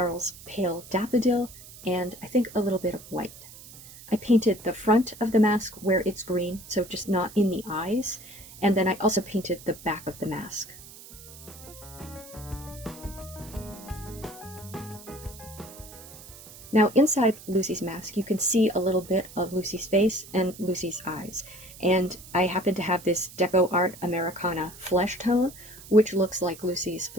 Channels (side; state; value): right; noise; hiss, 17 dB below the sound